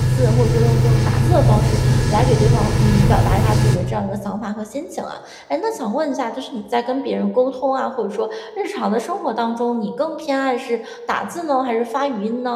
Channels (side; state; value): both; identical; correlation 1.00